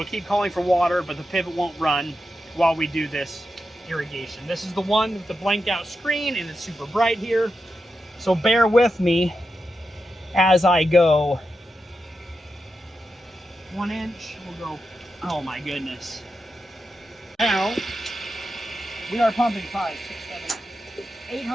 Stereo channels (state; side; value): normal; both; correlation 0.88